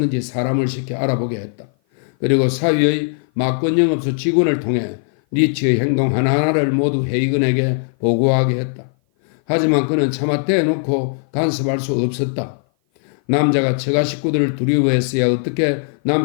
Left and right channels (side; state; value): right; silent; 56 dB below the other